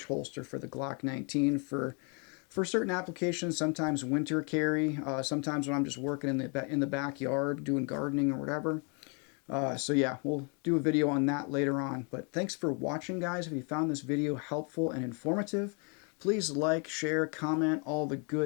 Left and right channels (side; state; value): right; quieter; 36.1 dB